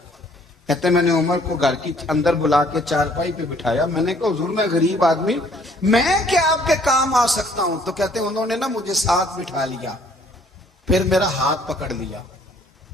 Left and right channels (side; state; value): both; normal; correlation 0.60